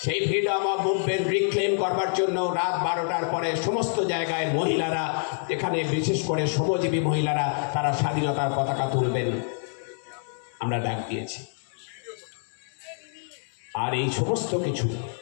সেই ফ্রিডম অফ মুভমেন্ট রিক্লেম করবার জন্য রাত 12টার পরে সমস্ত জায়গায় মহিলারা, এখানে বিশেষ করে শ্রমজীবী মহিলারা, তারা স্বাধীনতার পতাকা তুলবেন, আমরা ডাক দিয়েছি। আর এই সমস্ত কিছু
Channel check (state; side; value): silent; right; 60 dB below the other